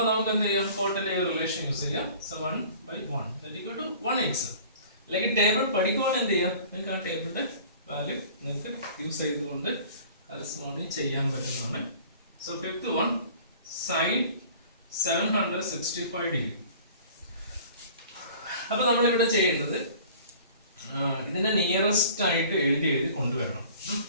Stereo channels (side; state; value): both; inverted; correlation -0.47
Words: നമുക്ക് എന്ത് ചെയ്യാം? കോട്ടിന്റെ റിലേഷൻ യൂസ് ചെയ്യാം. So 1/1 = 1/x. അല്ലെങ്കിൽ ടേബിൾ പഠിക്കുവാണെങ്കിൽ എന്ത് ചെയ്യാം? നിങ്ങൾക്ക് ആ ടേബിളിന്റെ വാല്യൂ നിങ്ങൾക്ക് യൂസ് ചെയ്തുകൊണ്ട് കറസ്പോണ്ടിങ് ചെയ്യാൻ പറ്റുന്നതാണ്. So fifth one, sine 765 degree. അപ്പൊ നമ്മളിവിടെ ചെയ്യേണ്ടത് ഇതിന്റെ നിയറസ്റ്റ് ആയിട്ട് എഴുതി കൊണ്ടുവരണം.